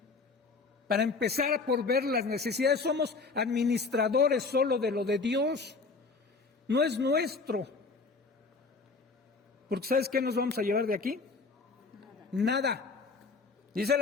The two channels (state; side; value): quieter; right; 4.2 dB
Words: Para empezar por ver las necesidades, somos administradores solo de lo de Dios, no es nuestro. Porque ¿sabes qué nos vamos a llevar de aquí? Nada. Dice